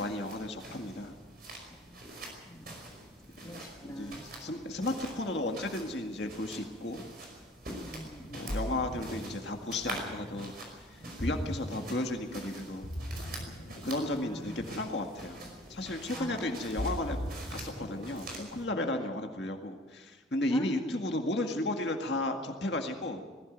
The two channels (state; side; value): normal; both; correlation 0.48